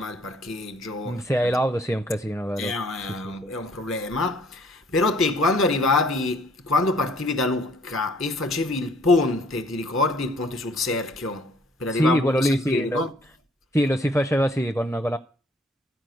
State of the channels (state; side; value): normal; both; correlation 0.60